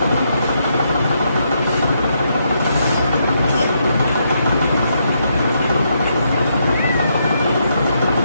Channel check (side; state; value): both; inverted; correlation -0.78